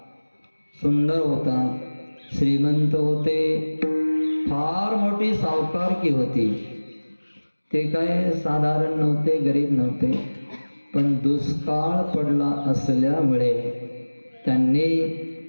सुंदर होता, श्रीमंत होते, फार मोठी सावकारकी होती. ते काय साधारण नव्हते, गरीब नव्हते, पण दुष्काळ पडला असल्यामुळे त्यांनी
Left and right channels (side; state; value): both; inverted; correlation -1.00